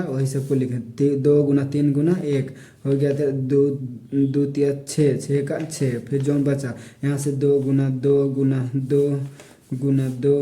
वही सबको लिखे 2 गुना 3 गुना 1 हो गया था 2 तिया 6 का 6, फिर जौन बचा यहाँ से 2 गुना 2 गुना 2 गुना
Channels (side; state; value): both; identical; correlation 1.00